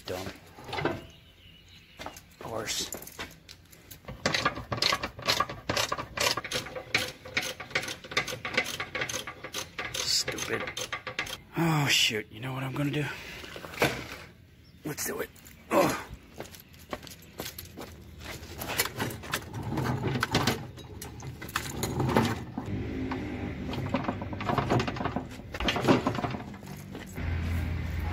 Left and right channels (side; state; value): both; identical; correlation 1.00